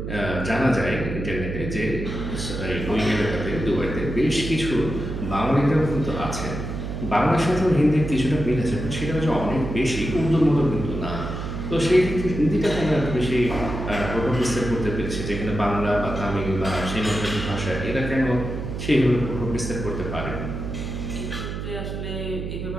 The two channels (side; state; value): right; noise; hum, 5 dB below the sound